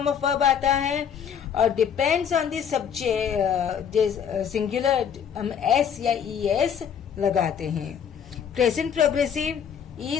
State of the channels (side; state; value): right; quieter; 7.9 dB